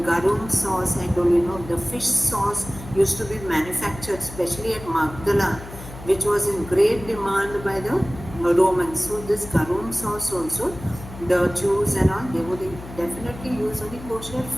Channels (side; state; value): left; noise; hum, 14 dB below the sound